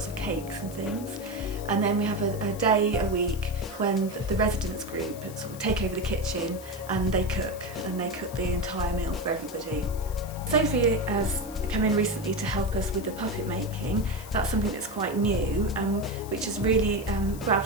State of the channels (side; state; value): left; noise; hiss, 17 dB below the sound